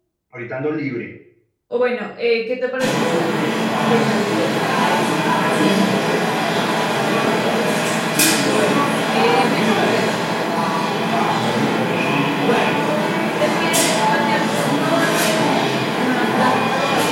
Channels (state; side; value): identical; both; correlation 1.00